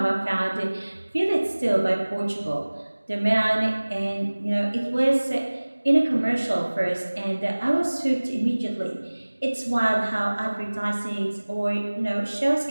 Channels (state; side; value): inverted; both; correlation -1.00